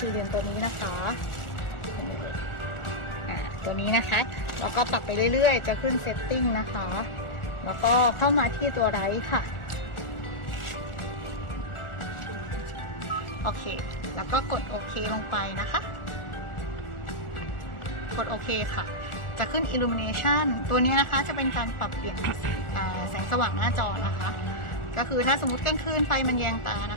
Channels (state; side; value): late; right; 1.4 ms